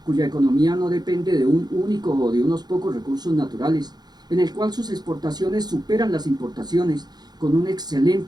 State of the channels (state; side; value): late; left; 0.20 ms